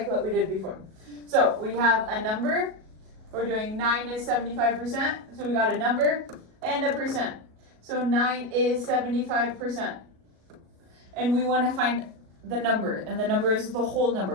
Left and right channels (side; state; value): left; late; 37 ms